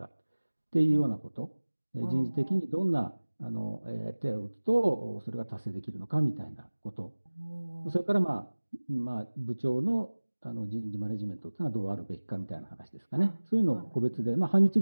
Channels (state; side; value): inverted; both; correlation -1.00